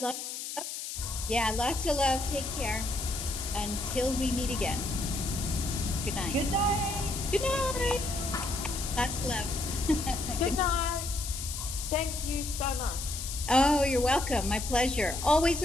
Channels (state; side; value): noise; left; hiss, 6 dB below the sound